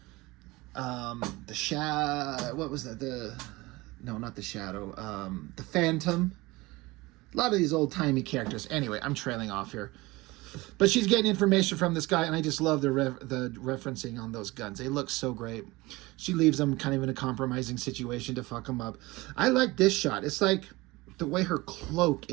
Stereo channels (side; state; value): left; quieter; 21.6 dB